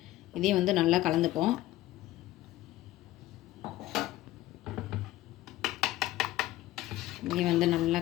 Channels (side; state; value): right; quieter; 15.9 dB